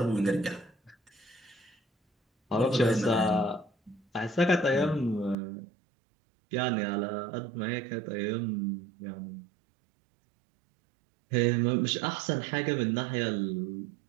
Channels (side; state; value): left; drops out; at 5.4 s